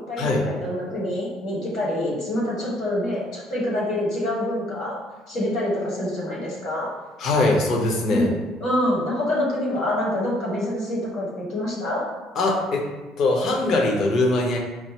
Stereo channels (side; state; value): both; normal; correlation 0.65